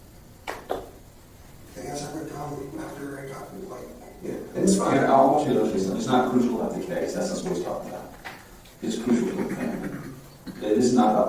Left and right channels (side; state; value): both; identical; correlation 1.00